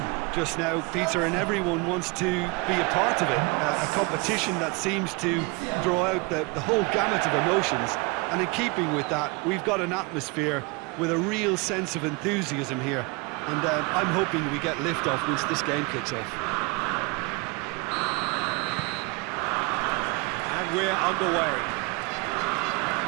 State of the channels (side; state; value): left; quieter; 27.9 dB